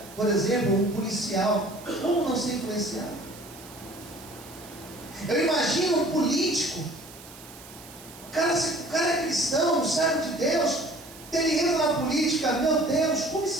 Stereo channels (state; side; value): noise; right; hiss, 18 dB below the sound